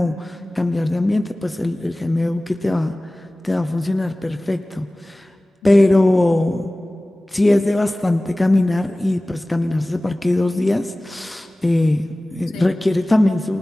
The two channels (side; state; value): both; normal; correlation 0.98